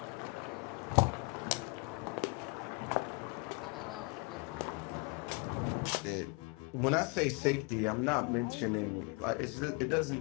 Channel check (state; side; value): quieter; right; 29.7 dB